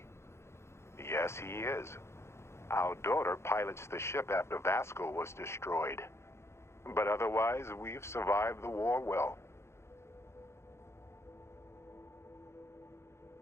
Yes, he is. Our daughter pilots the ship after Vasco was destroyed. But otherwise, we've survived the war well.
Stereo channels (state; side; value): late; right; 0.13 ms